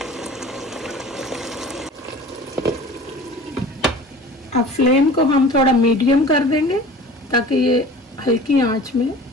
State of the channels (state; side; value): normal; both; correlation 0.42